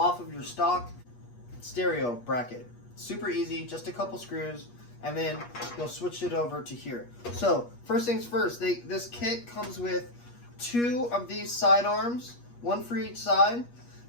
of your stock stereo bracket. Super easy, just a couple screws, and then you'll switch it over to here. So first things first, this kit comes with 2 of these side arms, 1 for each side.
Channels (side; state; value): right; late; 8.4 ms